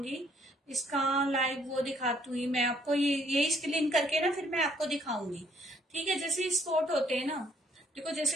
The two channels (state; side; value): normal; both; correlation 0.66